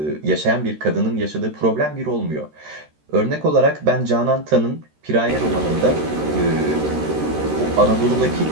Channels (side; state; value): left; late; 13 ms